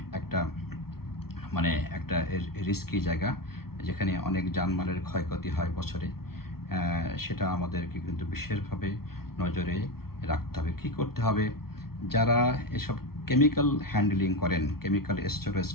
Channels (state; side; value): late; right; 0.94 ms